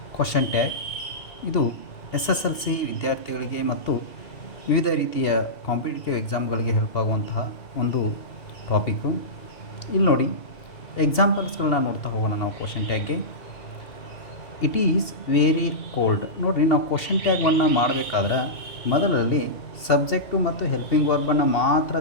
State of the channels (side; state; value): right; late; 2.5 ms